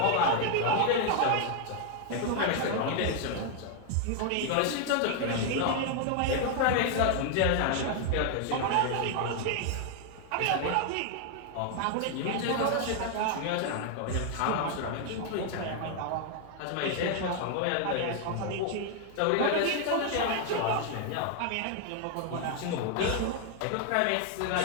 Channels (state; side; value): different; both; correlation 0.00